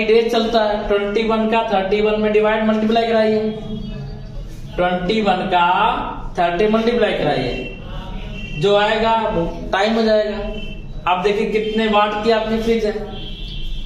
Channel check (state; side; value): identical; both; correlation 1.00